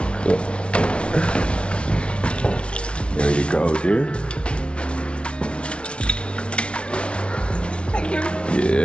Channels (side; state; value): right; late; 0.059 ms